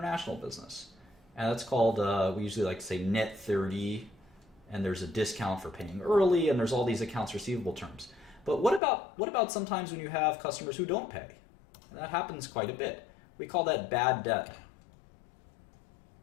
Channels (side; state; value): right; drops out; at 8.8 s